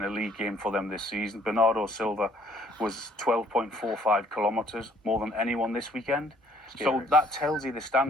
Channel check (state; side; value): normal; both; correlation 0.61